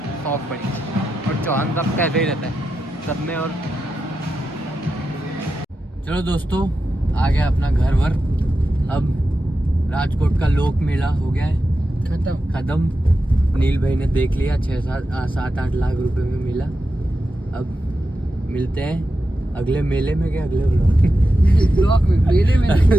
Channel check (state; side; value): normal; both; correlation 0.89